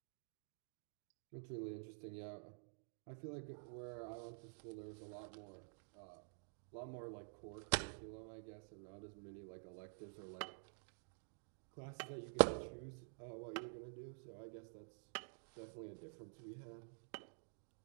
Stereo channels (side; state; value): left; silent; digital silence